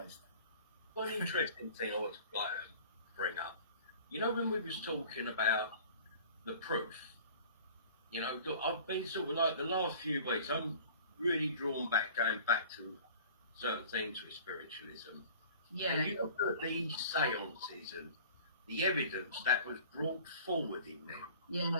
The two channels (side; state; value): both; inverted; correlation -0.45